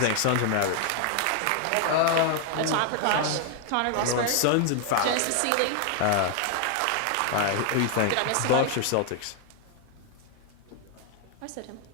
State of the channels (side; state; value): both; different; correlation 0.00